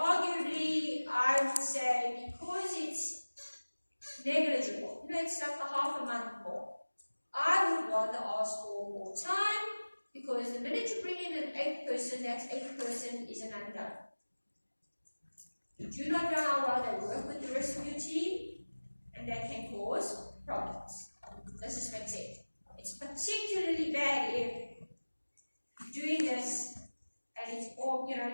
I would say because it's negligible, it's like a half a month more, I would rather ask for more time because the minute you bring in an 8th person, that 8th person is an unknown. You do not know how well they work with the rest of your team, and that can cause problems. Does this make sense? It's particularly bad if you're doing this and it's all,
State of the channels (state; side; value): inverted; both; correlation -1.00